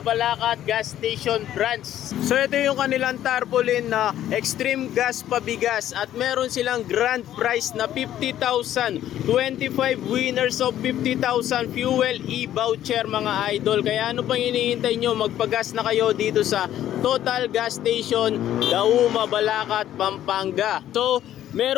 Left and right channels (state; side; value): quieter; right; 12.0 dB